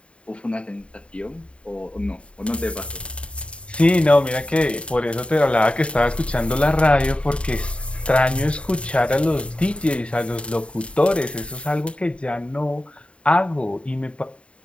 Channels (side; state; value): right; late; 0.059 ms